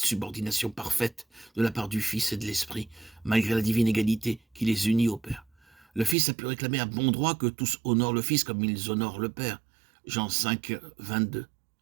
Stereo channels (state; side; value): drops out; left; at 6.2 s